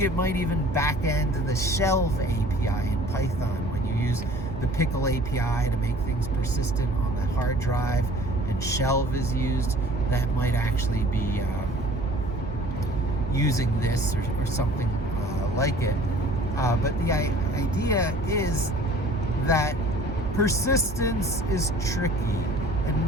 it might even back end the Shelve API in Python when you use the Pickle API to make things persistent on the hard drive, and Shelve is used. That might actually be using this or something like it. But the idea is that persistence is tricky and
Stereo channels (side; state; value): both; normal; correlation 0.49